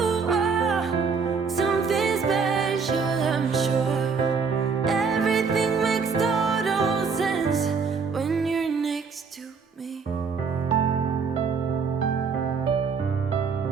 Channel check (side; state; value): left; quieter; 5.4 dB